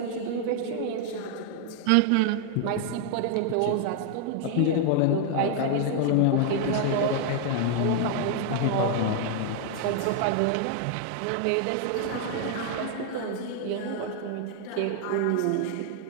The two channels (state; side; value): different; both; correlation 0.00